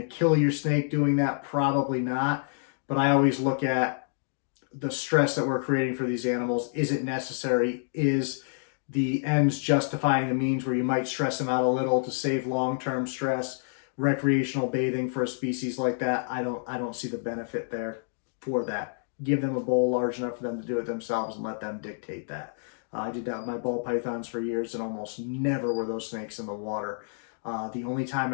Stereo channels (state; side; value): silent; right; digital silence